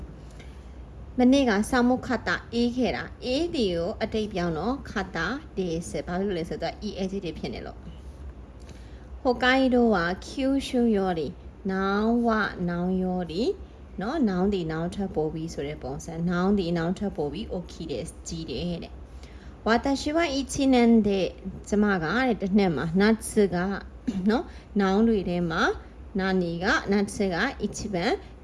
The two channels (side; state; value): both; identical; correlation 1.00